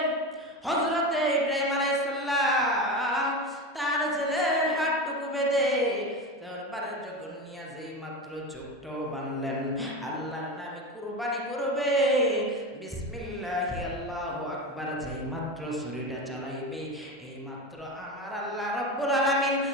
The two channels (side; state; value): both; normal; correlation 0.23